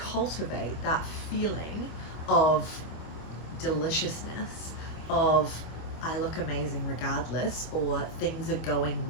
that feeling of deliciousness, of I look amazing regardless, or things are going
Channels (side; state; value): right; late; 25 ms